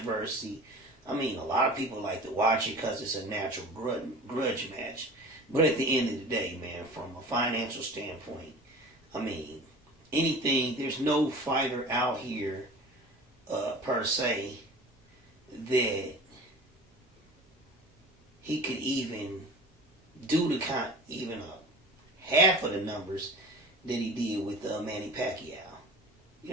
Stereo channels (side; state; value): both; normal; correlation 0.39